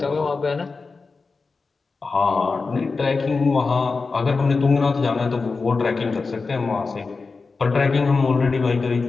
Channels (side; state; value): right; quieter; 4.3 dB